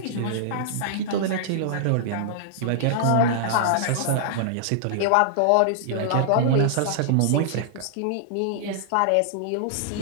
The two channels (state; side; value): different; both; correlation -0.01